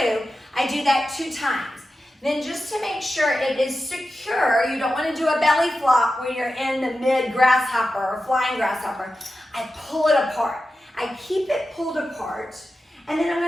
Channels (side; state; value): both; normal; correlation 0.92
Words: I do that 2 times. Then just to make sure it is secure, you don't want to do a belly flop when you're in the mid grasshopper or flying grasshopper. I pull it apart. I keep it pulled apart, and then